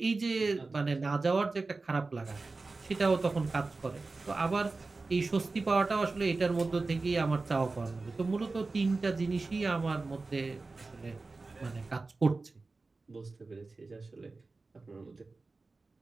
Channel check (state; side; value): quieter; left; 3.7 dB